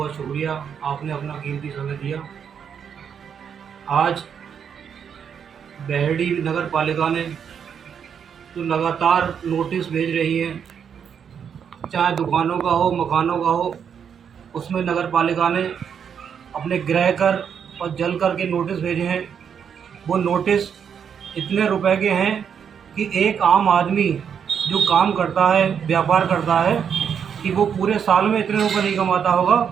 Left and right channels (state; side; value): quieter; left; 7.6 dB